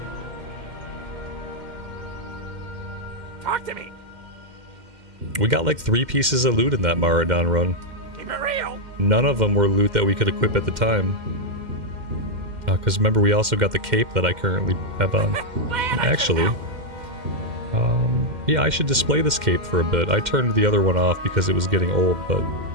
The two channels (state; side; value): late; left; 2.1 ms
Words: Talk to me. We got like 3 pieces of loot in that Maradon run. Keep it real. None of them were loot that we could equip at the time. Because remember, we also got the cape that I currently have on. Actually, yeah, I should display this cape for a bit. I turned the other one off because it was getting old, but